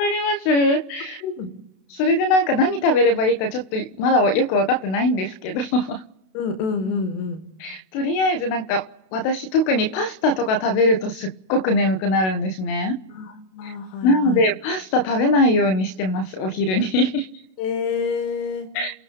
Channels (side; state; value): right; late; 32 ms